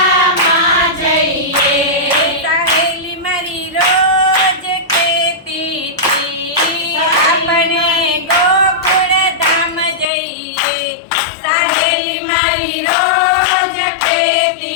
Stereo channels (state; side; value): drops out; right; at 10.1 s